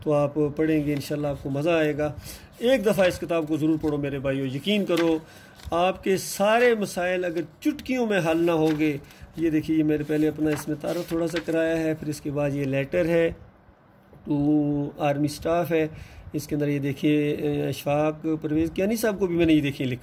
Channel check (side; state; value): both; identical; correlation 1.00